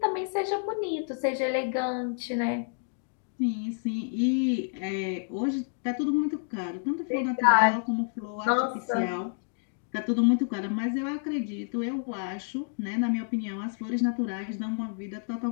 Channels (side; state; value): right; silent; 57 dB below the other